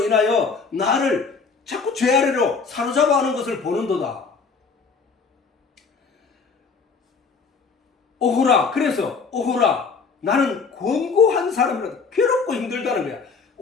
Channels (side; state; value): right; quieter; 5.0 dB